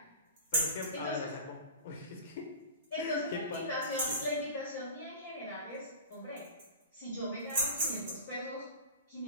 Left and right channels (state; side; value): inverted; both; correlation -0.34